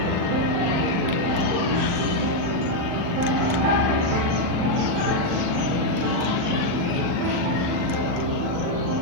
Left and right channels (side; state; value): left; late; 39 ms